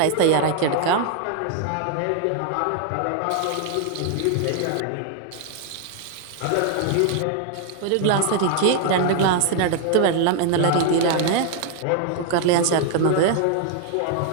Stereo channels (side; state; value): both; different; correlation 0.00